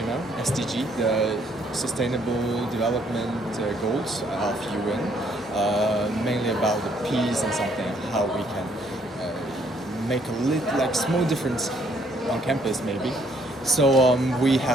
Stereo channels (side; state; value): both; normal; correlation 0.67